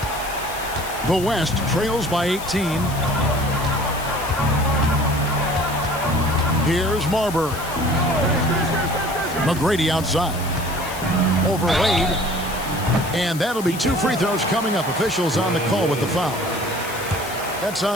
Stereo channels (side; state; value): left; noise; hiss, 12 dB below the sound